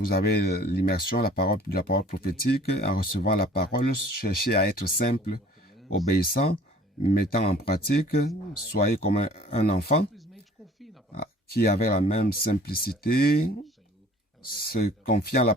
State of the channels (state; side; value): normal; both; correlation 0.51